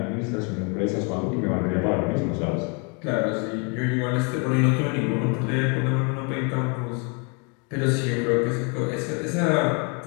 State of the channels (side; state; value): right; quieter; 34.8 dB